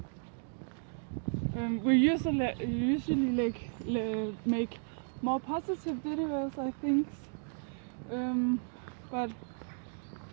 We usually make more positive videos, I think, but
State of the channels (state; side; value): silent; left; 55 dB below the other